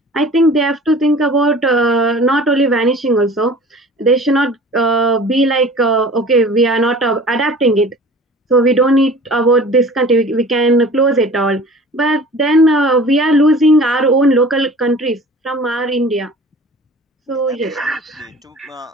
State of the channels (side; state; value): both; normal; correlation 0.44